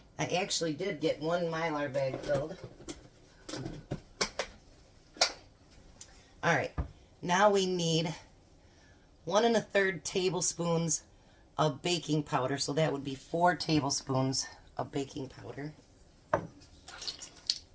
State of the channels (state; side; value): identical; both; correlation 1.00